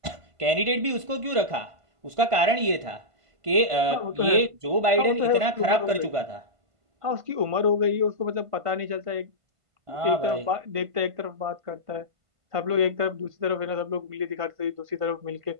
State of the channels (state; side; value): late; left; 1.5 ms